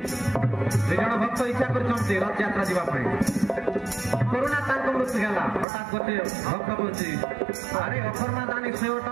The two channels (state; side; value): drops out; left; at 5.7 s